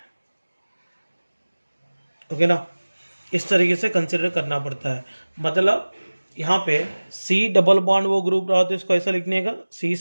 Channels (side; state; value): both; inverted; correlation -1.00